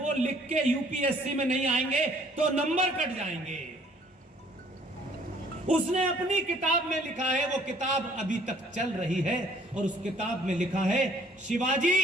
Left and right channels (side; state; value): both; normal; correlation 0.60